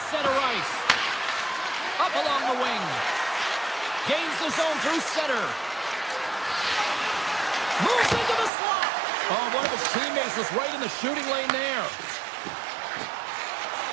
center ice. Up along the wing. Gains the zone through center. Moves into the slot. Oh, one of his teammates was right in the shooting lane there.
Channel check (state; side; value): drops out; left; at 8.5 s